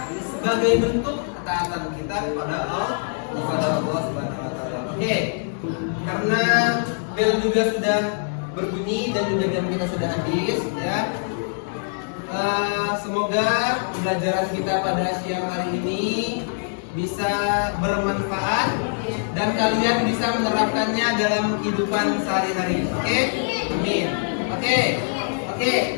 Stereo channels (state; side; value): silent; right; digital silence